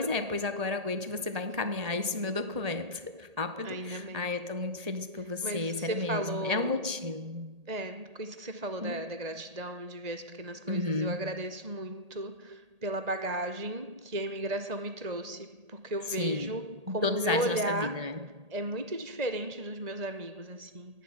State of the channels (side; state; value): left; late; 1.8 ms